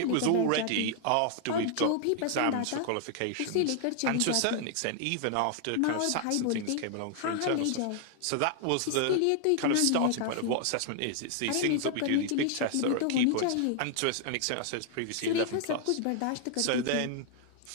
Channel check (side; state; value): both; different; correlation 0.00